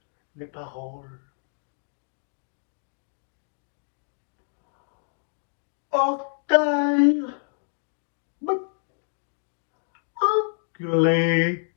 mes paroles. Orteil, enculé.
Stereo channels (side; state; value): right; silent; digital silence